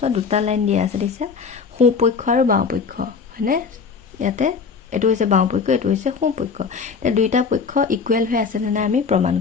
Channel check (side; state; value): right; quieter; 5.5 dB